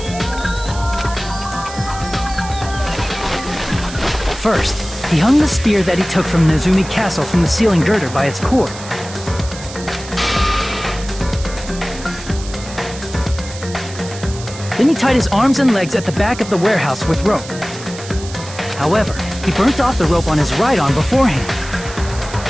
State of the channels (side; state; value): right; noise; hiss, 14 dB below the sound